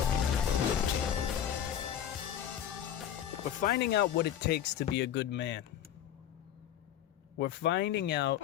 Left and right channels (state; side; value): quieter; right; 10.2 dB